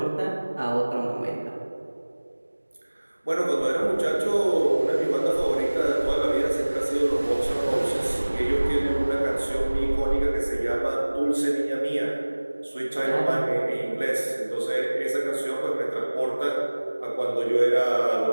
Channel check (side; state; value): both; inverted; correlation -1.00